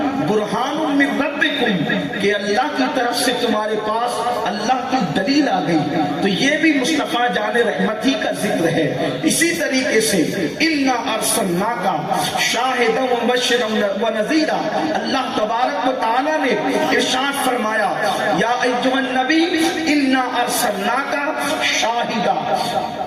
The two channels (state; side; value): identical; both; correlation 1.00